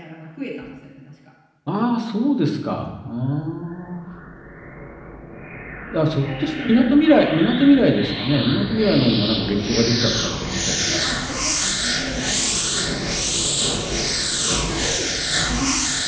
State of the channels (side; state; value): both; identical; correlation 1.00